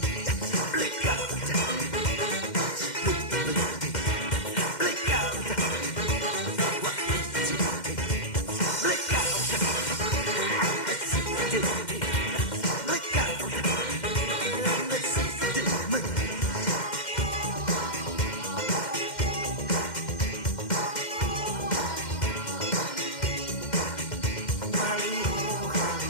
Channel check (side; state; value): right; late; 2.1 ms